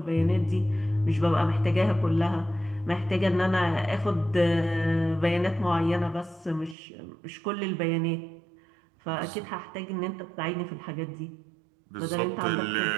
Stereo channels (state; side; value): drops out; left; at 6.8 s